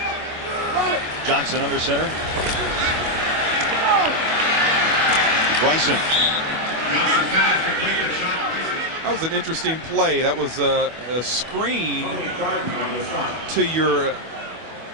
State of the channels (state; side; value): late; left; 25 ms